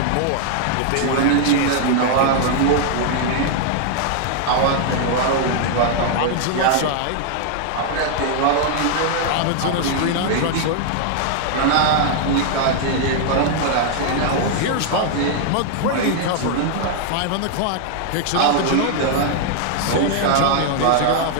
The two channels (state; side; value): different; both; correlation 0.00